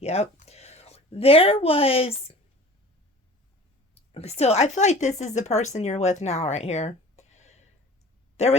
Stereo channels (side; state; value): both; normal; correlation 0.43